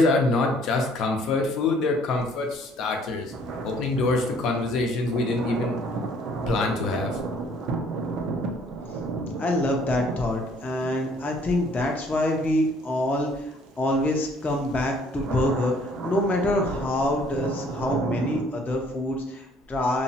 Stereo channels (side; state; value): both; normal; correlation 0.60